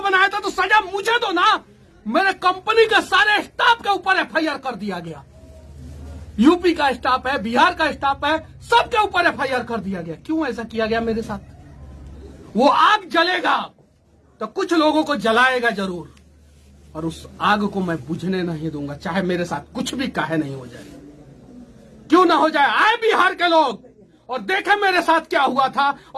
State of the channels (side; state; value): both; identical; correlation 1.00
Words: बनाया था तो सजा मुझे दो ना। मेरे कंपनी के सारे स्टाफ के ऊपर FIR कर दिया गया। यूपी का स्टाफ है, बिहार का स्टाफ है, सबके ऊपर FIR कर दिया गया। क्यों ऐसा किया गया मेरे साथ? वो आग जलेगा तो कुछ लोगों को जलाएगा जरूर, और उस आग को मैं बुझने नहीं दूंगा, चाहे मेरे साथ कुछ भी काहे नहीं हो जाए। क्यों ना हो जाए? आए बिहार के लोग और देखे मेरे साथ क्या हुआ था